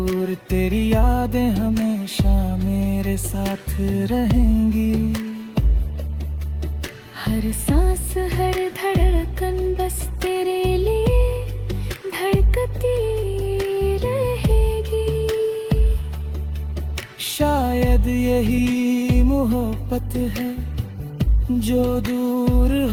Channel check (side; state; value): both; identical; correlation 1.00